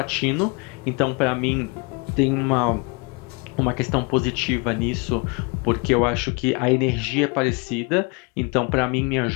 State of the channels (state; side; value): quieter; right; 30.8 dB